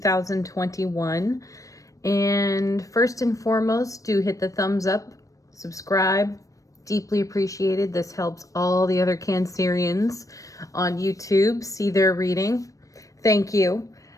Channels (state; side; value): late; right; 0.16 ms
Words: And first and foremost, do hit the thumbs up, subscribe. Deeply appreciated. This helps all the other Cancerians on YouTube see their reading. Thank you.